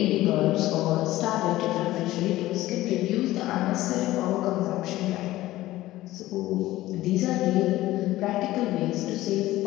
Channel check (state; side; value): quieter; right; 16.3 dB